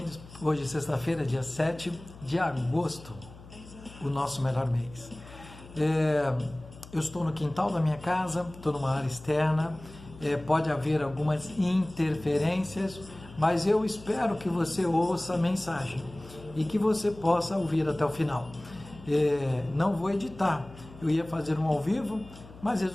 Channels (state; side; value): noise; left; hum, 18 dB below the sound